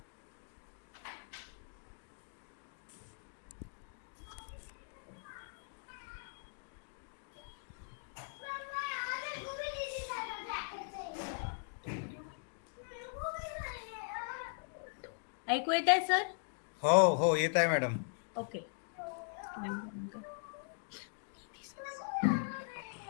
ऐकू येत आहे सर? हो येत आहे मॅडम. ओके.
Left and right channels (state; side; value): silent; right; digital silence